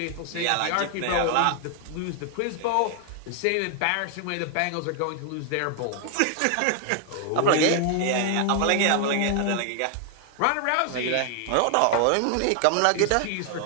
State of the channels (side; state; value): both; different; correlation 0.00